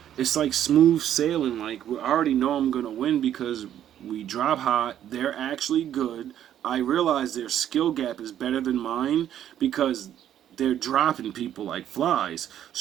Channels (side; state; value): left; quieter; 10.7 dB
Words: it's like smooth sailing. Like, I already know I'm gonna win because we drop hot. They're actually good. I realize their skill gap is better than mine because they're dropping people like flies.